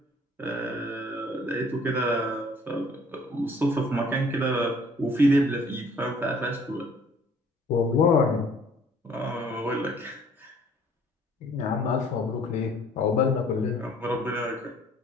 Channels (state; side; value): normal; both; correlation 0.57